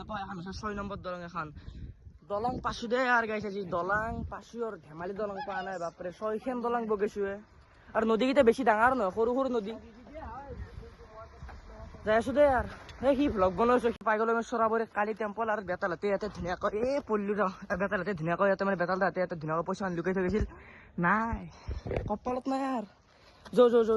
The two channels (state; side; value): identical; both; correlation 1.00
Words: এখন 6 নম্বর দলং এখন দলং পাশু দে আর গাইছে যে দলং পাশু আর ধেমালি দলং পা নাই বাপরে 6খান দলং বগেছুয়ে আর নদী কিটা বেশি ডাঙৰ নহয় সৰু সৰু নদী যাই আছো দে আর কি ভ্লগ বনাইছো পাই গলো আমি সরাবরে কালি টেম্পল আর বেতালতে ইয়াতে ধুনীয়াকৈ পল্লু বেতালতে ধুনীয়াকৈ ইয়াতে মানে বেতাল দাঁতে ইয়াতে ধুনীয়াকৈ পইচা লুকাই থৈ গৈছিল নাই কপালত নাই আর যো